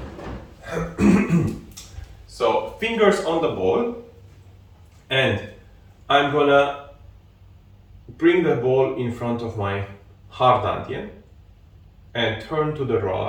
So, fingers on the ball. And I'm gonna bring the ball in front of my hard dantian and turn to the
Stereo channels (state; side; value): identical; both; correlation 1.00